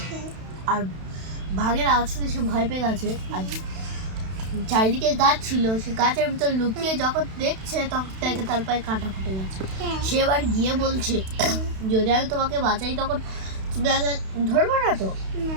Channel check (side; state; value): left; late; 32 ms